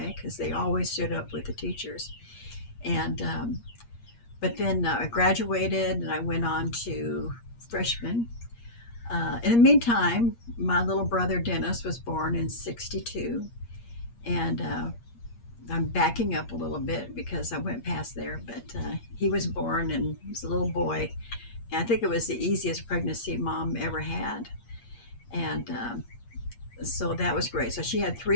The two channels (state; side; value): late; right; 8.5 ms